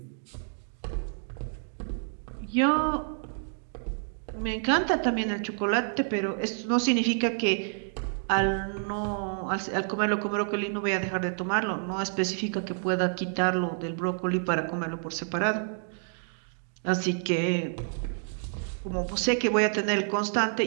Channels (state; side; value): silent; left; 59 dB below the other